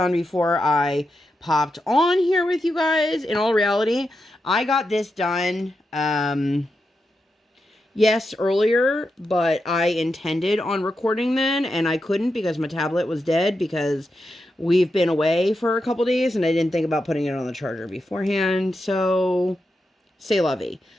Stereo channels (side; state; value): both; normal; correlation 0.87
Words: before I popped on here with you guys. In all reality, I got this done, yes, earlier, but I intended on recording then, and I couldn't because my tablet was dead because we've been away for a couple days, and I didn't think about putting it on the charger beforehand, so c'est la vie.